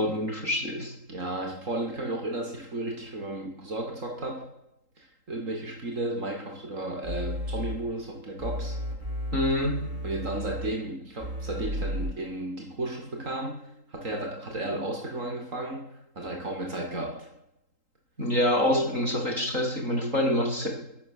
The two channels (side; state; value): left; late; 3.8 ms